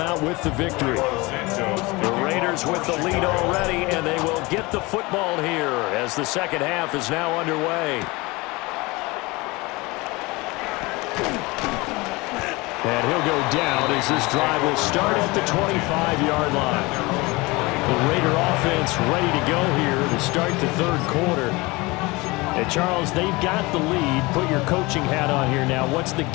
with the victory. The Raiders with the lead already, and they will get the football here as the second half is now underway. And he'll go down as this drive will start at the 25-yard line. The Raider offense ready to go here to start the third quarter. And Charles, they've got the lead. Put your coaching hat on here now. What's the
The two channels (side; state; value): right; quieter; 23.6 dB